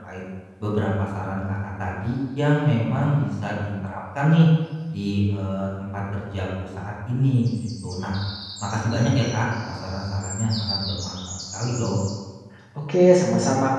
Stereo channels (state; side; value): identical; both; correlation 1.00